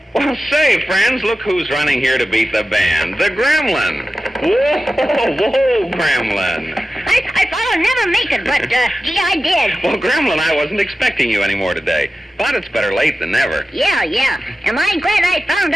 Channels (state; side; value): normal; both; correlation 0.94